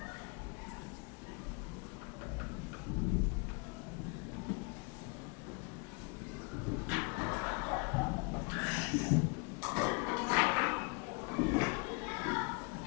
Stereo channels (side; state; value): right; quieter; 33.3 dB